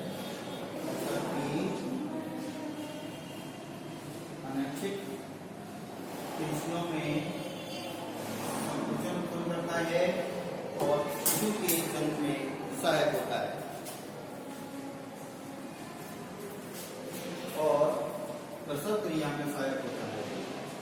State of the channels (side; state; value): both; identical; correlation 1.00